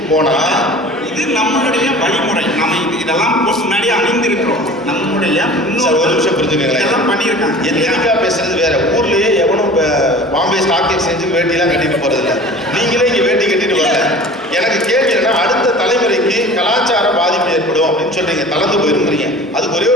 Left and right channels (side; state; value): both; normal; correlation 0.41